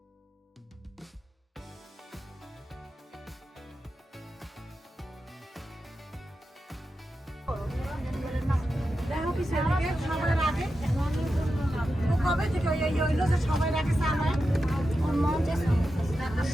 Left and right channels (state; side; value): normal; both; correlation 0.90